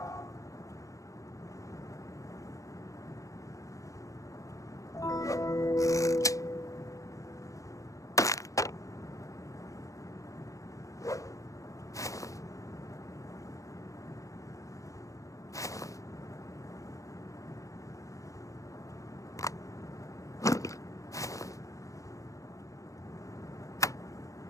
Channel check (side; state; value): right; late; 0.16 ms